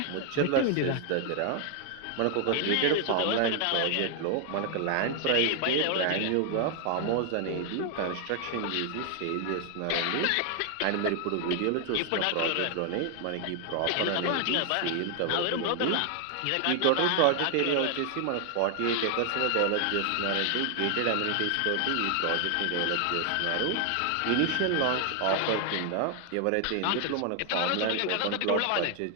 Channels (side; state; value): both; different; correlation 0.00